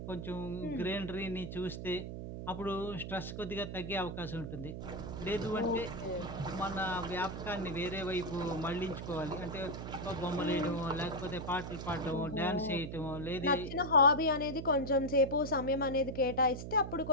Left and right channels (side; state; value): right; noise; hum, 7 dB below the sound